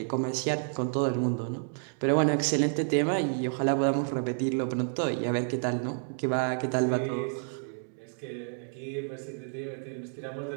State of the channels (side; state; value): left; silent; 58 dB below the other